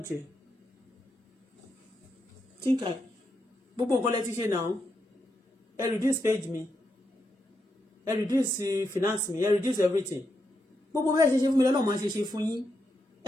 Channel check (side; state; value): both; normal; correlation 0.83